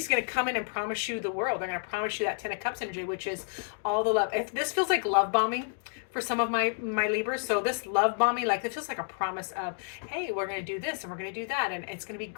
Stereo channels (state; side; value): silent; right; digital silence